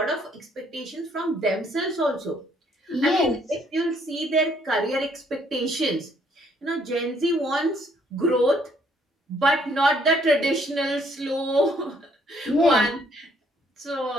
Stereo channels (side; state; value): both; normal; correlation 0.66